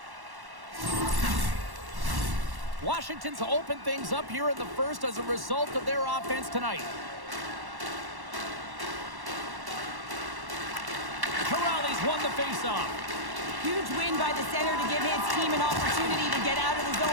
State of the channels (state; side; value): late; left; 1.1 ms